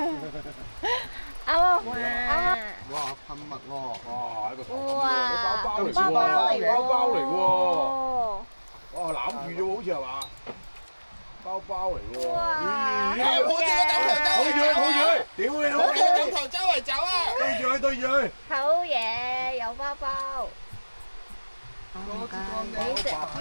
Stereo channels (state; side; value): inverted; both; correlation -1.00